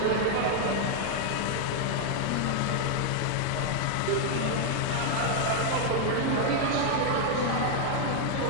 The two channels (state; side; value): different; both; correlation 0.00